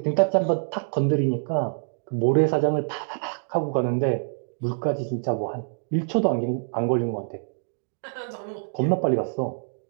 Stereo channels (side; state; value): left; silent; digital silence